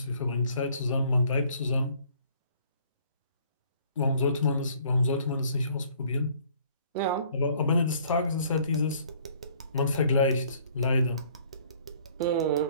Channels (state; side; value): inverted; both; correlation -0.58